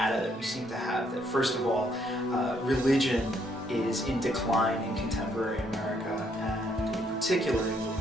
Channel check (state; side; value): normal; both; correlation 0.71